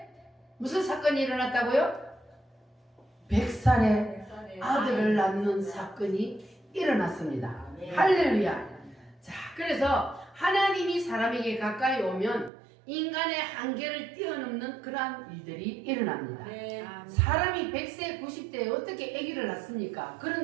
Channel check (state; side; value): drops out; left; at 12.5 s